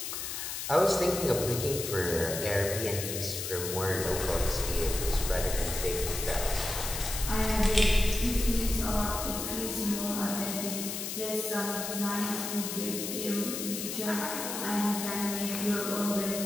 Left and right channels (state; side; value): noise; left; hiss, 5 dB below the sound